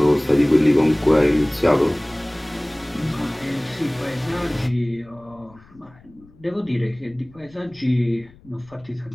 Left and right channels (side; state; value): left; noise; rumble, 26 dB below the sound